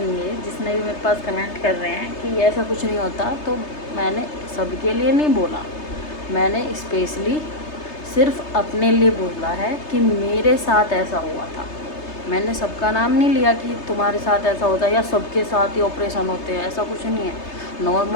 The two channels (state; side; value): late; right; 3.3 ms